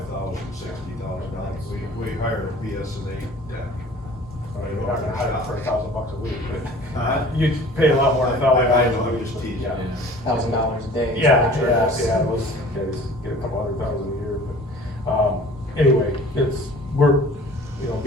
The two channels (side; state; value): both; normal; correlation 0.47